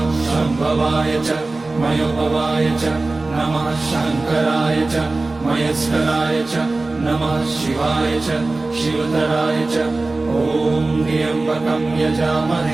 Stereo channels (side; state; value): left; quieter; 3.3 dB